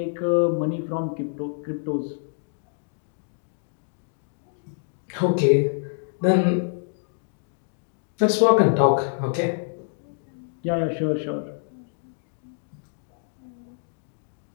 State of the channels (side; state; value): right; silent; digital silence